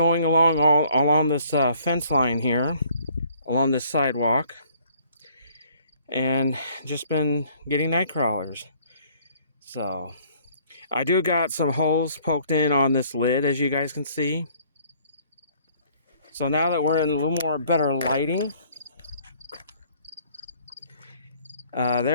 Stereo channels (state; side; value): inverted; both; correlation -0.60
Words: along all along this fence line here, along this sidewalk, and just been getting Nightcrawlers. So I do got some holes poked in on this lid, as you guys can see. So now that we're in a little more better lighting,